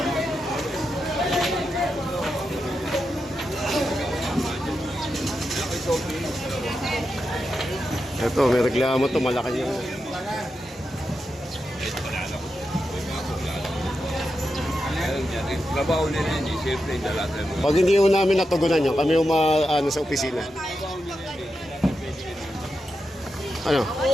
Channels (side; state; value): both; normal; correlation 0.88